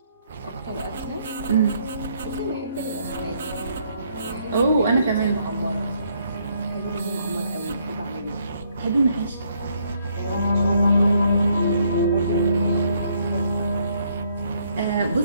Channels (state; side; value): inverted; both; correlation -0.70